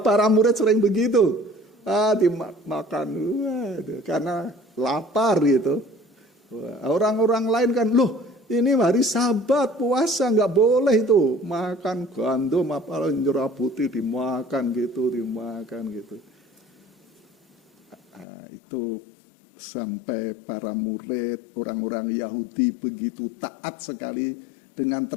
murid sering begitu. Dimakan karena lapar gitu. Orang-orang lain kan, loh ini hari Sabat puasa, nggak boleh itu makan gandum apa jerah putih dimakan gitu. Itu sampai para murid, orang-orang Yahudi begitu taat sekali dengan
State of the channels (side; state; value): right; drops out; at 18.2 s